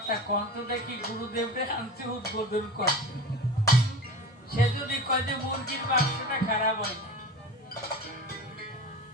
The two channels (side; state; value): both; normal; correlation 0.31